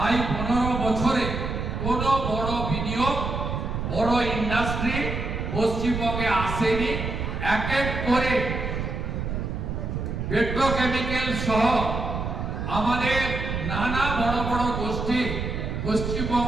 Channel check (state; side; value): noise; right; rumble, 3 dB below the sound